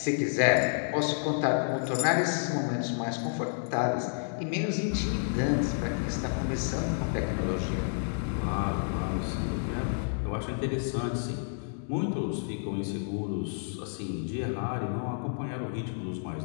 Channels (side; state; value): right; silent; digital silence